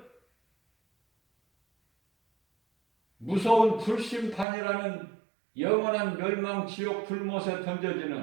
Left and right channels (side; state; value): left; drops out; at 4.5 s